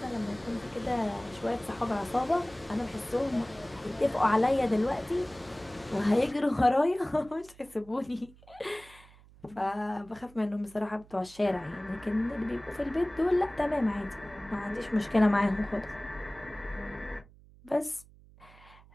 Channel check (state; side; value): noise; right; hum, 24 dB below the sound